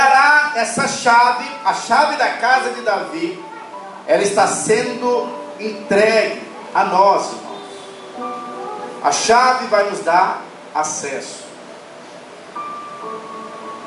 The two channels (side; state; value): both; identical; correlation 1.00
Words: essa chave, a chave da casa de Davi. Ela está sendo entregue a nós, irmãos. A chave vai nos dar acesso.